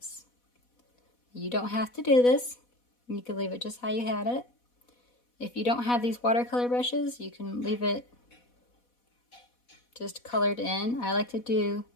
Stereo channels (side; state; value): right; late; 4.1 ms